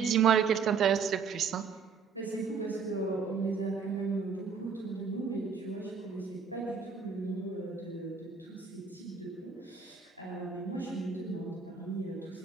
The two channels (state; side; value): quieter; left; 5.8 dB